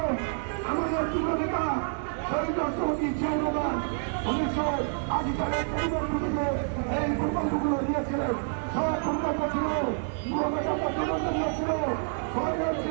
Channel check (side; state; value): left; silent; digital silence